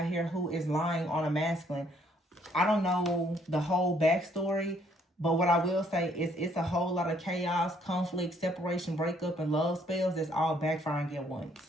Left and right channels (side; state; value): both; normal; correlation 0.66